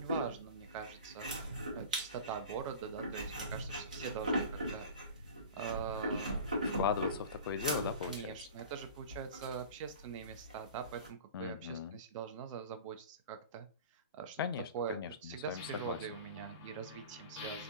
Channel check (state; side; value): inverted; both; correlation -0.37